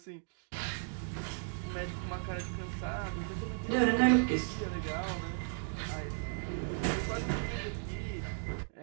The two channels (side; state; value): left; silent; digital silence